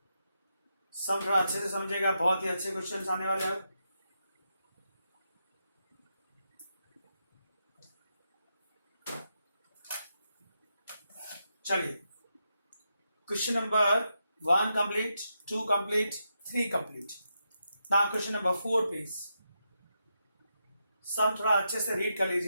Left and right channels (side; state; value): both; inverted; correlation -0.84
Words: सम थोड़ा अच्छे से समझेगा, बहुत ही अच्छे क्वेश्चन आने वाले हैं। चलिए question number 1 complete, 2 complete, 3 complete. Now question number 4 please. Sum थोड़ा अच्छे से रीड कर